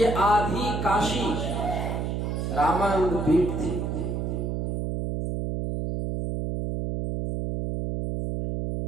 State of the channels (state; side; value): noise; right; hum, 2 dB below the sound